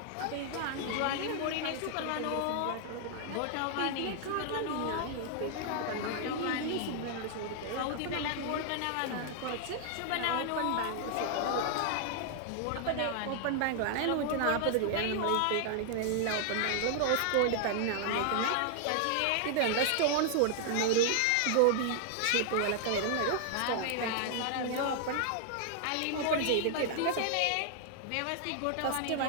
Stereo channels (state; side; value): different; both; correlation 0.00